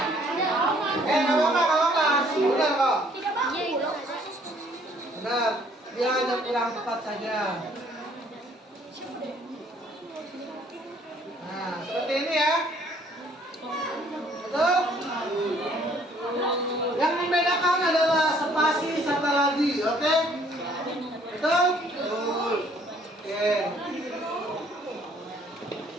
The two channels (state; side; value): normal; both; correlation 0.61